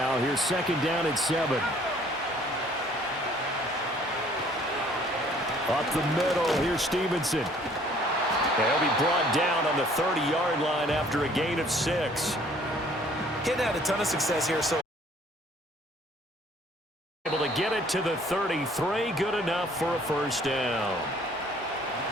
here's second down at 7. Up the middle, here's Stevenson. He'll be brought down on the 30-yard line after a gain of 6. Getting had a ton of success here, so able to get it to the 33, good enough for a first down.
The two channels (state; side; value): normal; both; correlation 0.58